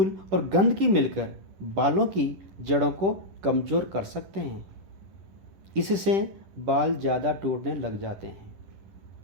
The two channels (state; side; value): late; left; 10 ms